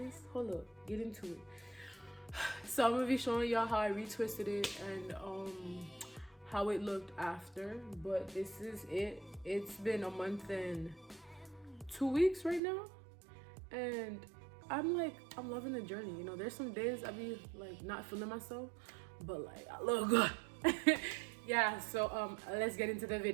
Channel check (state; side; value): drops out; left; at 12.6 s